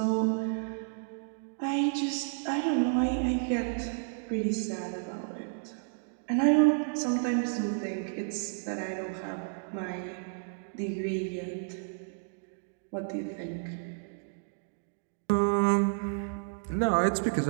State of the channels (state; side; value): silent; left; digital silence